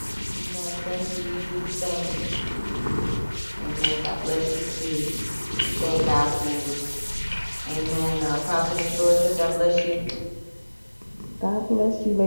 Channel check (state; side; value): inverted; both; correlation -1.00